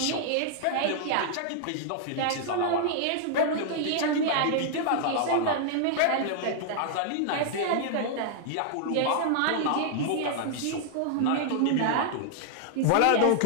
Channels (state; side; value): different; both; correlation -0.01